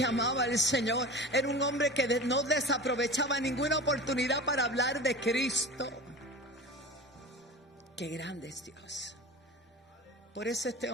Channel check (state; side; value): normal; both; correlation 0.34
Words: amaba al Señor, era un hombre que no desaprovechaba ninguna oportunidad para hablar de Cristo. Qué grande es Dios. Por eso este